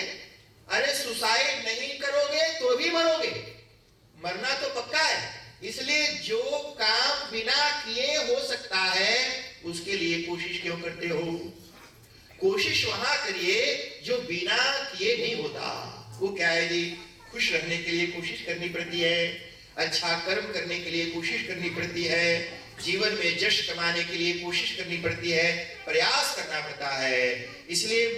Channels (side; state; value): both; identical; correlation 1.00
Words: अरे सुसाइड नहीं करोगे तो भी मरोगे, मरना तो पक्का है। इसलिए जो काम बिना किए हो सकता है उसके लिए कोशिश क्यों करते हो? कोशिश वहां करिए जो बिना किए नहीं होता। वो क्या है जी? खुश रहने के लिए कोशिश करनी पड़ती है, अच्छा कर्म करने के लिए कोशिश करनी पड़ती है, जीवन में यश कमाने के लिए कोशिश करनी पड़ती है, प्रयास करना पड़ता है। इसलिए